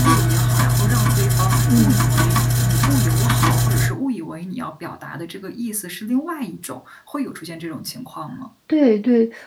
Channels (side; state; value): both; identical; correlation 1.00